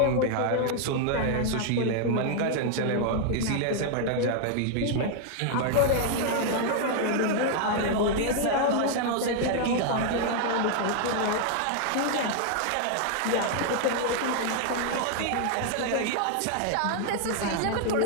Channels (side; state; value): both; different; correlation 0.00